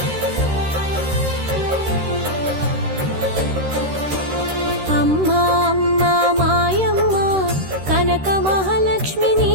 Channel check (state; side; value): late; left; 13 ms